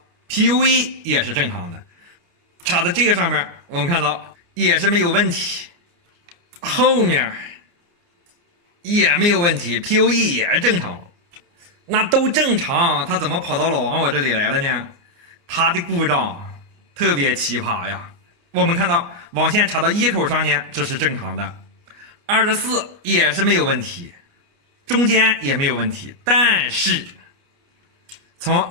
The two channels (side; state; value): left; late; 29 ms